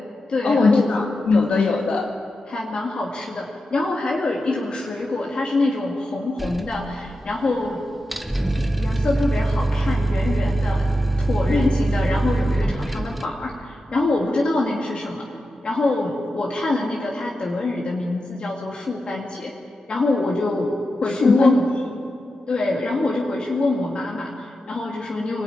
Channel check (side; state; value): both; normal; correlation 0.90